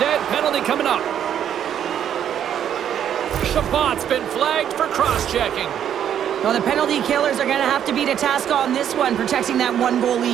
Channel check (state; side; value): quieter; left; 9.6 dB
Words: Penalty coming up. Shabbat's been flagged for cross-checking. Well, the penalty killers are going to have to beat a task on this one, protecting that one-goal